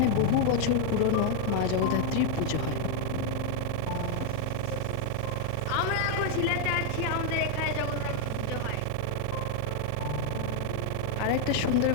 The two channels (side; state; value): both; different; correlation 0.00